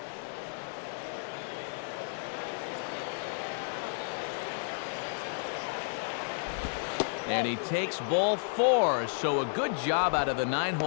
And he takes ball 4, so a good job out of the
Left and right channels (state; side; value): silent; right; digital silence